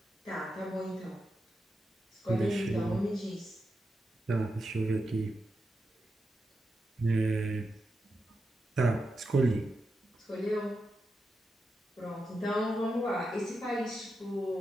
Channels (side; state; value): both; normal; correlation 0.88